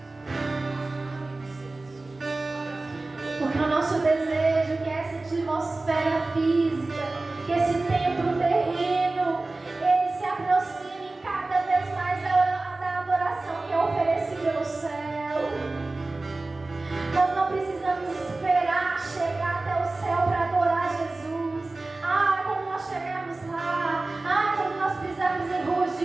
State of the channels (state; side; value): quieter; left; 3.2 dB